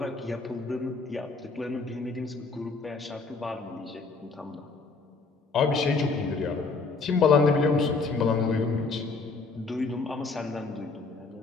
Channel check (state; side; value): quieter; right; 4.2 dB